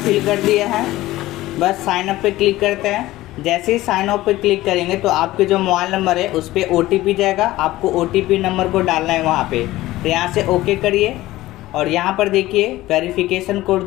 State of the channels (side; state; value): right; quieter; 16.9 dB